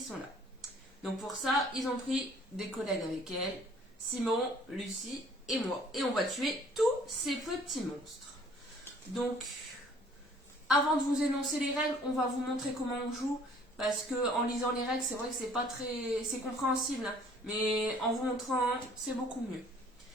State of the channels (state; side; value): normal; both; correlation 0.56